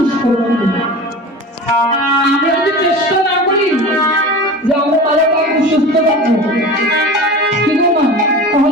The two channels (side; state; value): both; normal; correlation 0.34